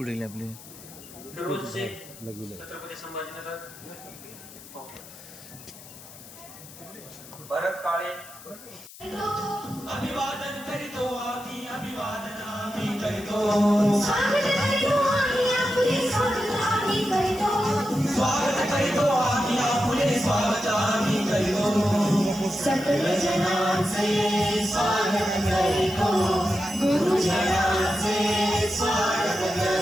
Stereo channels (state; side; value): noise; left; hiss, 18 dB below the sound